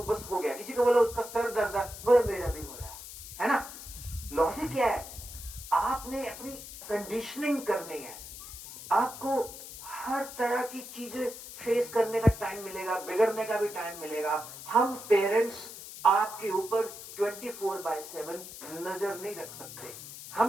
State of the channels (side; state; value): left; noise; hiss, 12 dB below the sound